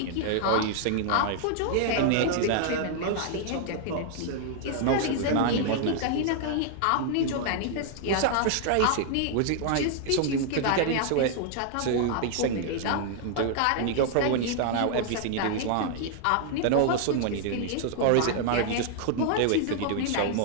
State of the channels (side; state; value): both; different; correlation 0.00